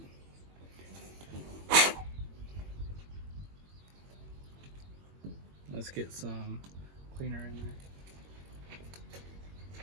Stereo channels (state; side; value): late; left; 21 ms